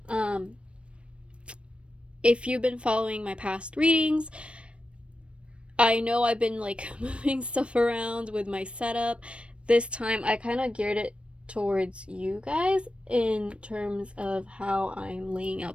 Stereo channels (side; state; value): left; late; 0.060 ms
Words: if you've been following my past readings, I know I've been like moving stuff around with my setup. This time I kind of geared it towards you guys in terms of how I'm laying